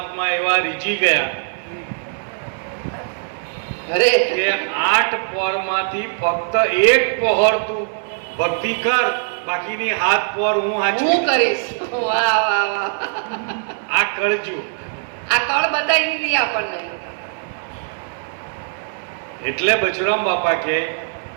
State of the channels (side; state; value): left; silent; 60 dB below the other